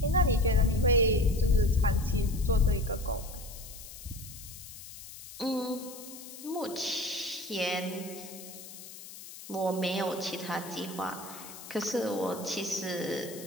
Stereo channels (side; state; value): left; noise; hiss, 14 dB below the sound